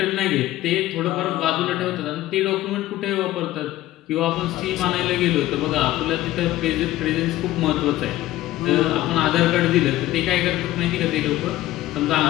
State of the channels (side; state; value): right; quieter; 15.4 dB